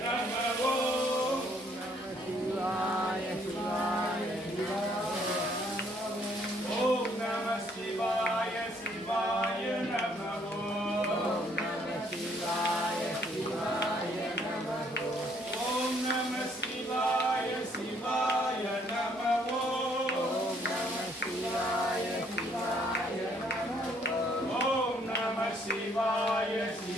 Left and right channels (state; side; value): normal; both; correlation 0.66